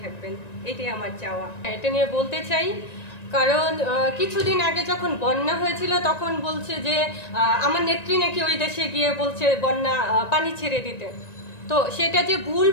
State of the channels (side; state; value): right; late; 1.9 ms